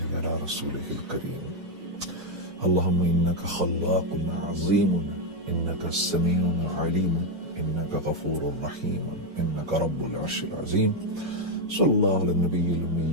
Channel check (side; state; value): left; late; 6.6 ms